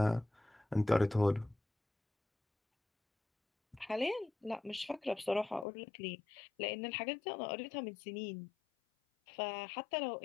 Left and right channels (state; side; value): drops out; right; at 5.7 s